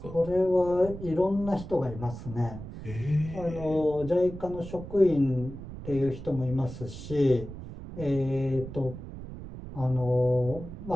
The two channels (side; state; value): right; noise; rumble, 11 dB below the sound